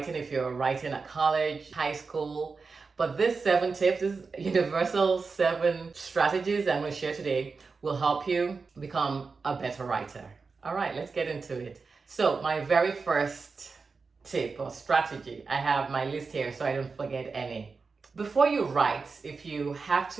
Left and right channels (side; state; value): left; quieter; 4.6 dB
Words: if you're writing at college, high school. But this 7 tips, this universal 7 strategies I'm going to share today will help you become a better writer. All right, let's get into it. So my very first tip or strategy, I have my list here so I don't forget any. Before you write, if you have